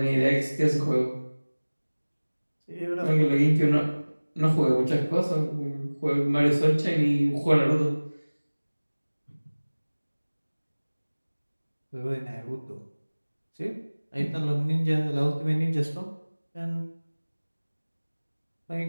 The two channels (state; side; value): inverted; both; correlation -1.00